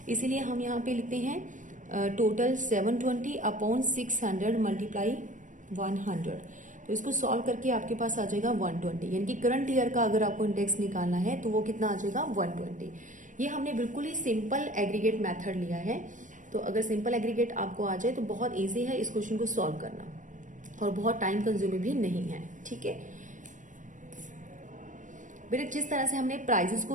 इसीलिए हम यहाँ पे लिखते हैं टोटल 720 अपॉन 600 मल्टीप्लाई 100। तो इसको सॉल्व करके आपके पास आ जाएगा 120, यानी कि करंट ईयर का अगर आपको इंडेक्स निकालना है तो वो कितना आ जाएगा 120। ये हमने बिल्कुल ही सिंपल एग्रीगेट मेथड लिया है। तो अगर सिंपल एग्रीगेट आपको आ जाए तो बहुत ईजी है इस क्वेश्चन को सॉल्व करना और बहुत टाइम कंज्यूमिंग भी नहीं है, ठीक है। बेटे जिस तरह से हमने प्राइजेस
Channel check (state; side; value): late; left; 0.37 ms